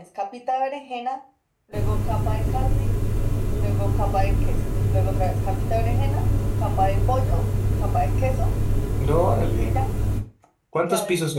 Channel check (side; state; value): both; identical; correlation 1.00